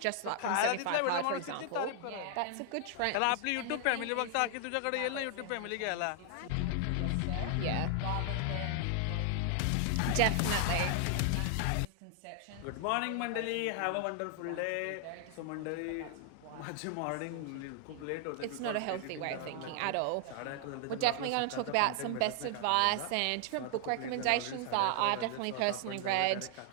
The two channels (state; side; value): different; both; correlation 0.00